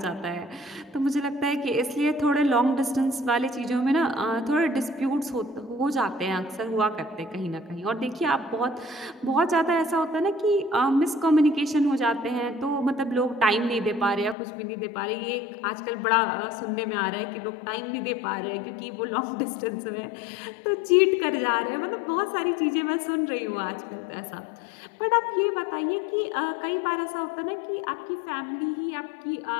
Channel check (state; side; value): drops out; right; at 14.4 s